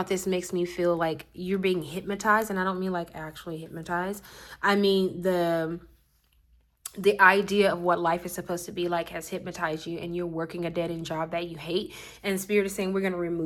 this makes me feel like you're being hypnotized. And I don't mean like actually hypnotized. I mean the idea of what life is supposed to be like has hypnotized you, and you're working a dead-end job that you hate. And Spirit is saying we're going to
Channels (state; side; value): identical; both; correlation 1.00